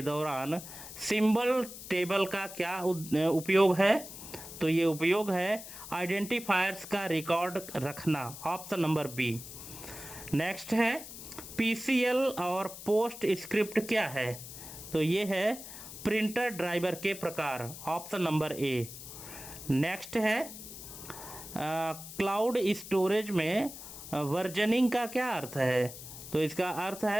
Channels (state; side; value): noise; left; hiss, 12 dB below the sound